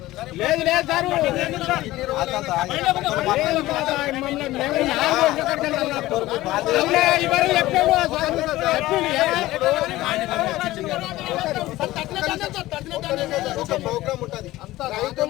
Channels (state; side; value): quieter; right; 17.1 dB